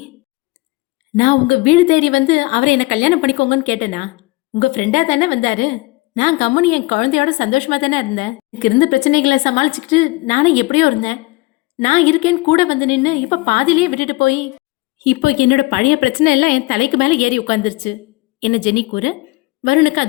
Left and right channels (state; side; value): quieter; right; 22.5 dB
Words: நான் உங்க வீடு தேடி வந்து அவரை என்ன கல்யாணம் பண்ணிக்கோங்கன்னு கேட்டேனா? உங்க ஃப்ரெண்டா தானே வந்தாரு. நான் கம்முனி என் குழந்தையோட சந்தோஷமா தானே இருந்தேன். எனக்கு இருந்த பிரச்சனைகளை சமாளிச்சுக்கிட்டு நானும் எப்படியோ இருந்தேன். நான் இருக்கேன்னு கூட வந்து நின்று இப்ப பாதிலேயே விட்டுட்டு போய் இப்போ என்னோட பழைய பிரச்சனை எல்லாம் என் தலைக்கு மேல ஏறி உட்கார்ந்துருச்சு என்ன ஜெனி கூற, வருணுக்கு